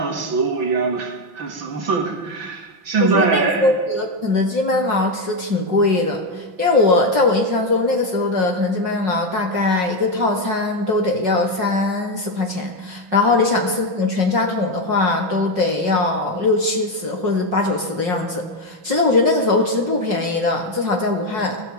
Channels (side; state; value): left; late; 5.5 ms